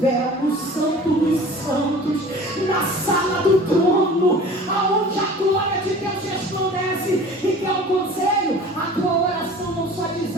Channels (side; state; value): both; normal; correlation 0.43